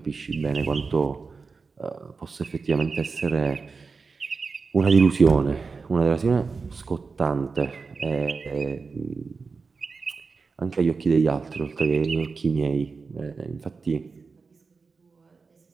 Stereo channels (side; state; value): left; quieter; 4.6 dB